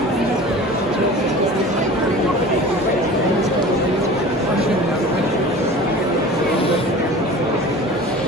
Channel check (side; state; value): both; normal; correlation 0.39